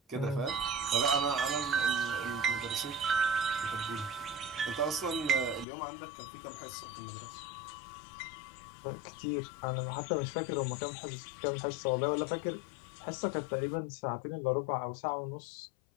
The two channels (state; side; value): drops out; right; at 5.7 s